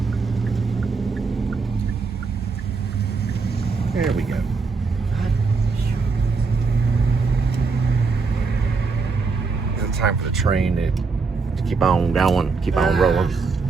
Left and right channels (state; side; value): quieter; left; 4.5 dB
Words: There we go. It's time for the train to keep on going, keep on rolling.